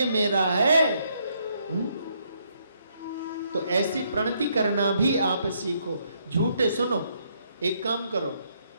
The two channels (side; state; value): both; inverted; correlation -0.73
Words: मेरा है। तो ऐसी प्रणति करना भी आप सीखो। झूठे सुनो, एक काम करो,